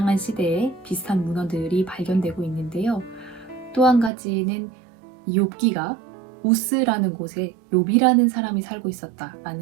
시대에 비슷한 문헌들이 발견되고 있는데요. 또 한 가지는 이 욥기가 우스라는 곳에 욥이라는 사람이 살고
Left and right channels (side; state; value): left; drops out; at 4.1 s